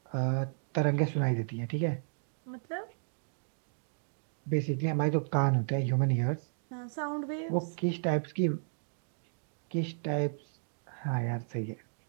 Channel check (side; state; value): left; silent; digital silence